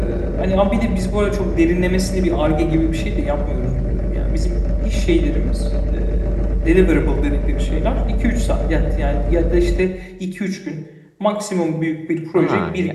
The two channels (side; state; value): both; identical; correlation 1.00